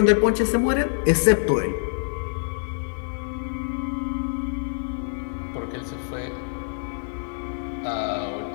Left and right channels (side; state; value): right; silent; digital silence